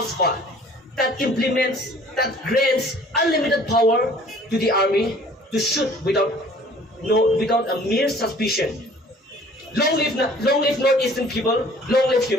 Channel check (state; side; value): normal; both; correlation 0.52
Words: that grants unlimited power to the army to shoot without a mere suspicion. Long live Northeastern people, long live